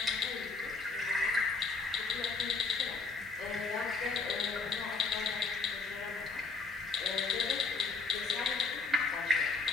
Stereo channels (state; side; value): quieter; right; 4.3 dB